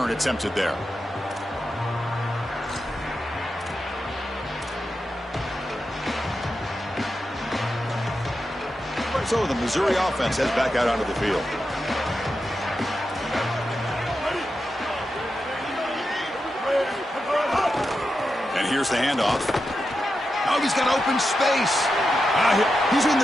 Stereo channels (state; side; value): normal; both; correlation 0.89